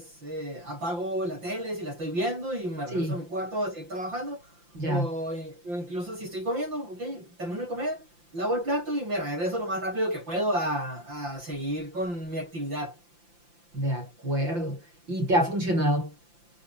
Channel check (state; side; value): late; left; 5.8 ms